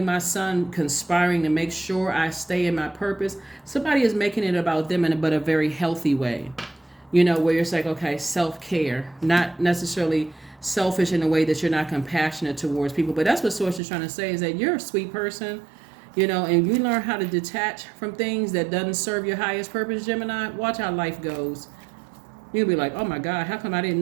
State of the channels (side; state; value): left; drops out; at 13.8 s